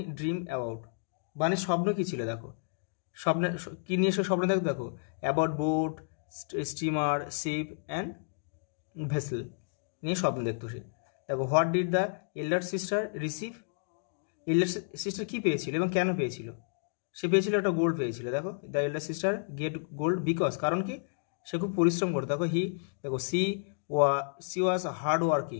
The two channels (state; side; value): silent; right; digital silence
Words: ড্রিম অ্যাবাউট, বানির স্বপ্ন কী ছিল, দেখো স্বপ্নে কী নিয়ে সে স্বপ্ন দেখো about boat, steamer, ship and vessel নিয়ে স্বপ্ন দেখতো সে। দেখো what did the elder sister receive, elder sister কী পেয়েছিল এবং কেন পেয়েছিল, সে পেয়েছিল একটা গোল্ড পেয়েছিল। দেখো the elder sister get gold because কারণ কি সে খুব পরিশ্রম করতো। দেখো দেখো she was hard